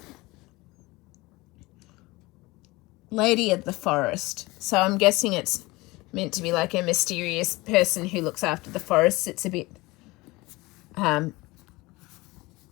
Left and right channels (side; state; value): right; quieter; 21.9 dB